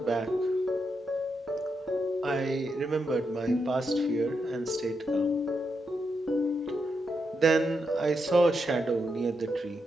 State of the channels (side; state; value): both; normal; correlation 0.83